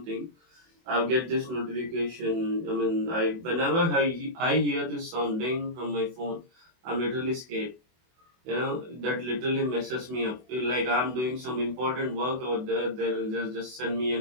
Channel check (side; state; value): left; late; 24 ms